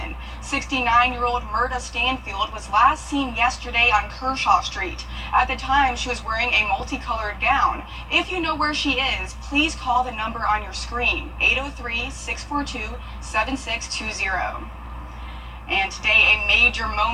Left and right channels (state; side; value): identical; both; correlation 1.00